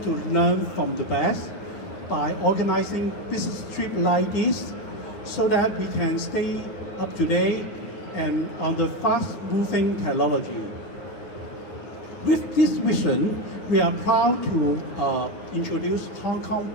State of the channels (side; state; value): right; late; 9.4 ms